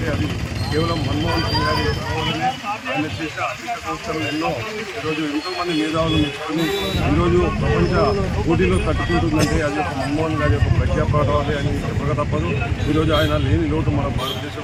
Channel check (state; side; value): identical; both; correlation 1.00